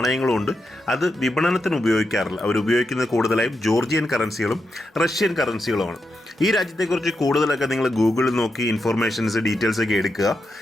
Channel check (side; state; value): both; normal; correlation 0.86